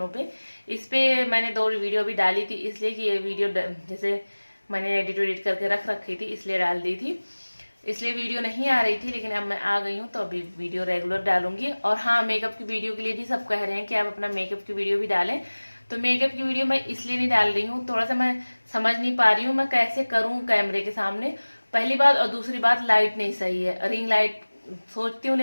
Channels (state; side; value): inverted; both; correlation -1.00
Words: पे। इस पे मैंने 2 वीडियो भी डाली थी, इसलिए कि ये वीडियो जैसे मैंने एडिट करके रख रखी थी, इसलिए डाल दी थी, इसलिए वीडियो नहीं आ रही थी। लेकिन अब मैं आ गई हूँ, तो अभी वीडियो रेगुलर डालूंगी। और हाँ, मेकअप की वीडियो के लिए भी सब कह रहे हैं कि आप अपना मेकअप की वीडियो भी डालें, तो मेकअप की वीडियो मैं इसलिए नहीं डाल रही हूँ, थोड़ा सा मैं समझ नहीं पा रही हूँ मैं कैसे करूँ कैमरे के सामने, पहली बात। और दूसरी बात, लाइट नहीं सही है, रिंग लाइट सोचती हूँ